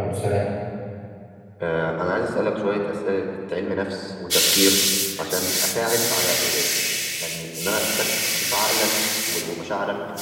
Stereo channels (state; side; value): identical; both; correlation 1.00